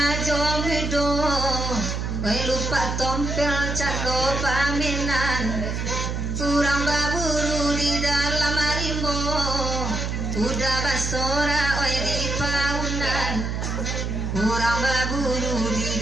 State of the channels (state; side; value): noise; right; hum, 2 dB below the sound